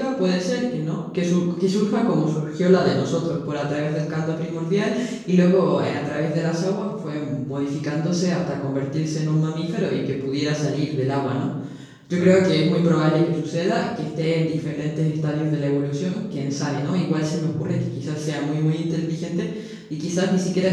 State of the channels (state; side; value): identical; both; correlation 1.00